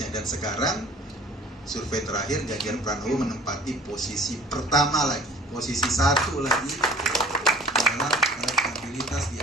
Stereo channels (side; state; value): both; normal; correlation 0.49